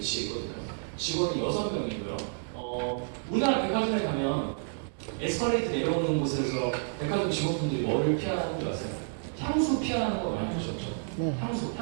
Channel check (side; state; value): left; silent; digital silence